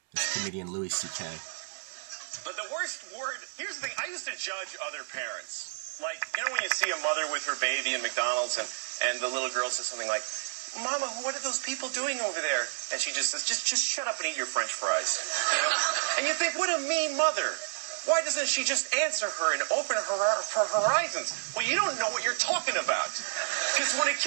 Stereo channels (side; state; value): left; silent; 58 dB below the other